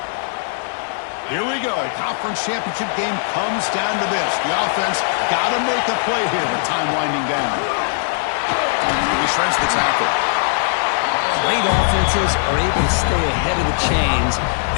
Here we go. Conference championship game comes down to this. The offense got to make a play here with time winding down. He shreds the tackle. Great offenses are able to stay ahead of the chains,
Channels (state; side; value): silent; right; 66 dB below the other